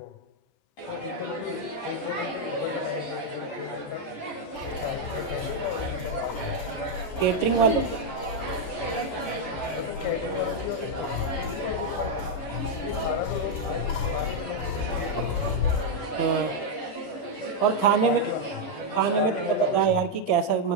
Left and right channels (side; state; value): right; late; 14 ms